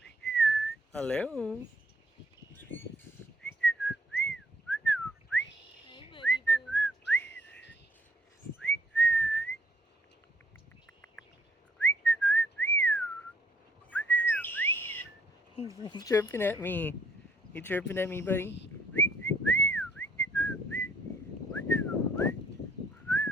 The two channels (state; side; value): normal; both; correlation 0.64